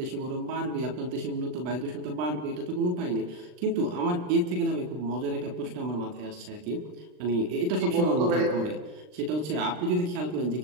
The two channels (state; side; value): late; left; 39 ms